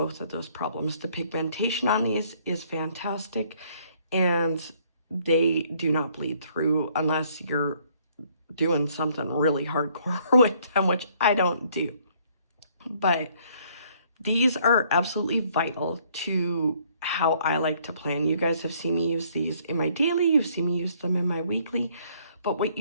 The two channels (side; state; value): both; inverted; correlation -0.64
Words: of those problems. The pigmentation on these is fantastic, and they do not bleed through unless you're doing something really hardcore with them, which I don't do. But these are absolutely vital to how I like to plan. You guys have seen me use these in my daily, you've seen me use them in my weekly, but what